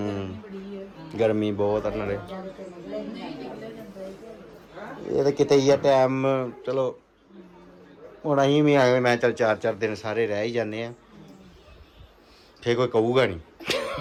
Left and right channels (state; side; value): identical; both; correlation 1.00